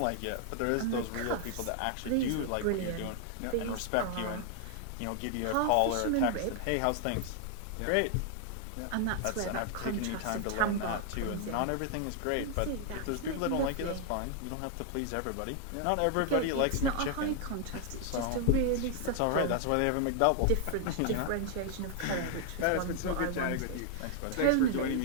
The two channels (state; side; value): different; both; correlation 0.00